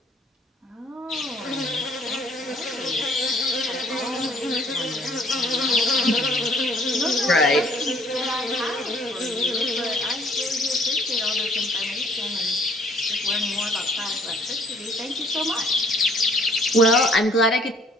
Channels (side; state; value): both; normal; correlation 0.60